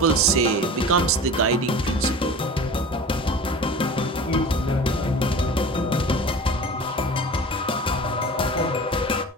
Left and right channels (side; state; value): both; normal; correlation 0.38